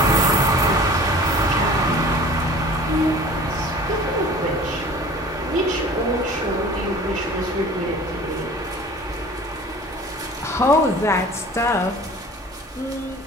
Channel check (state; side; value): normal; both; correlation 0.44